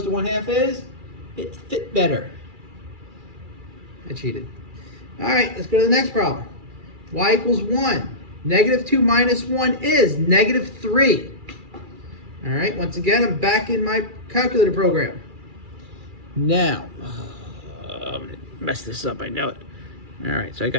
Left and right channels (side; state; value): left; late; 2.4 ms